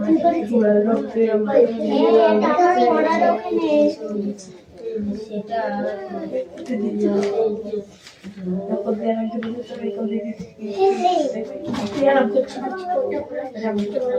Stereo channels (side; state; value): both; identical; correlation 1.00